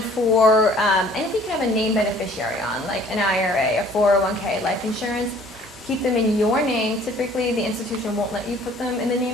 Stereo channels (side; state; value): both; normal; correlation 0.55